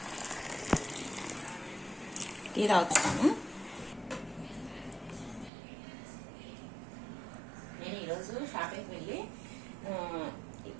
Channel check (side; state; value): left; drops out; at 5.5 s